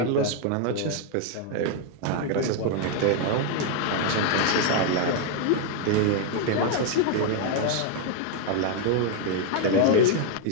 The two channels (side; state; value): both; different; correlation 0.01